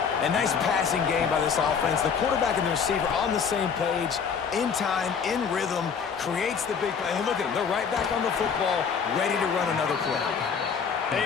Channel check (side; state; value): right; quieter; 6.4 dB